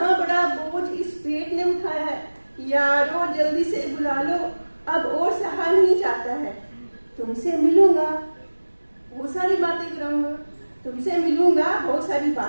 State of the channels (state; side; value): inverted; both; correlation -1.00